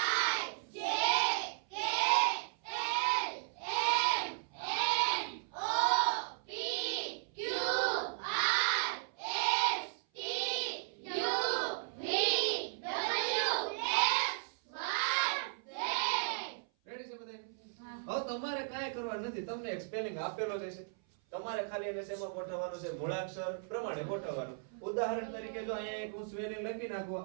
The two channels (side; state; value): left; silent; 54 dB below the other